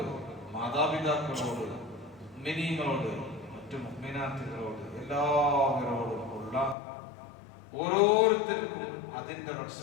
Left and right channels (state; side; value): drops out; right; at 6.8 s